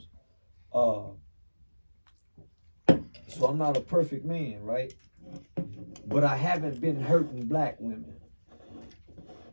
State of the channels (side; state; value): both; inverted; correlation -1.00